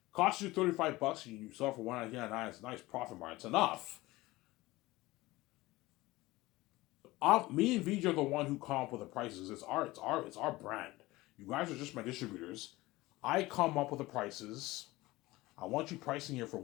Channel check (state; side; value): quieter; right; 19.6 dB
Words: Cost you $35 and you sell for $119.99. It's a nice profit margin. It's enough. Me and VJ are the one who come up with the prices. It's our brand. You guys are just my distributors. I come up with the prices. I want you pricing here for